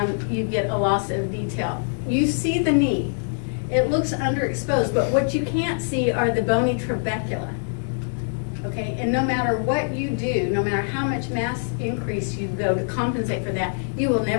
you get a loss of detail. You see the knee. It looks underexposed, but what you can't see are the bony trabecula. Okay, and no matter what you do, no matter how much mass increase you go to compensate for that, you will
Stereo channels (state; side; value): silent; right; digital silence